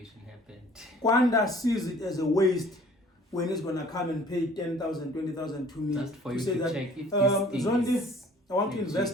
happened. Kwanda sees it as a waste when he's gonna come and pay 10,000, 20,000 to me. Just for you to say to that, check if Zondi, I want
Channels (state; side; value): normal; both; correlation 0.52